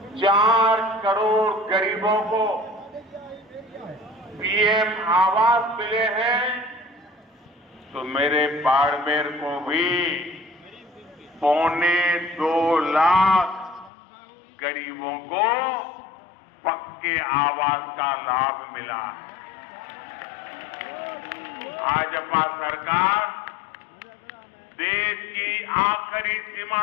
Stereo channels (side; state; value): right; drops out; at 13.9 s